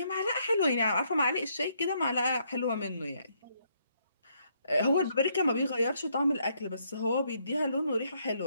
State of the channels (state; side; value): inverted; both; correlation -0.72